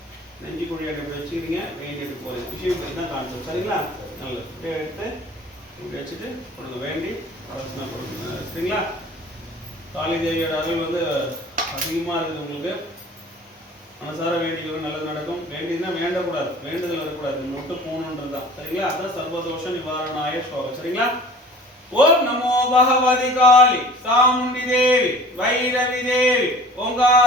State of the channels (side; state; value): both; normal; correlation 0.46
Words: நெஞ்சு குழி எடுத்து வச்சுக்கிறீங்க. வெயின் எடுத்து போகிறீங்க. விஷயம் தான் கான்செப்ட். சரிங்களா? நல்லது. இப்படியே எடுத்து இப்படி வச்சுட்டு கொடுங்க. வேண்டி அரசனா கொடுங்க. சரிங்களா? காளி தேவியோட அருள் வந்து அதிகமாக இருக்குது உங்களுக்கு. மனசார வேண்டிக்கிறது நல்லது நடக்கும். வேண்டியதுன்னா வேண்டக்கூடாது. வேண்டுதல் வரக்கூடாது. மட்டும் போகணுன்றது தான். சரிங்களா? அதான் சர்வதோஷ நிவாரணாய ஸ்லோகம். சரிங்களா? ஓம் நமோ பகவதி காளி சாமுண்டி தேவி வைரவி தேவி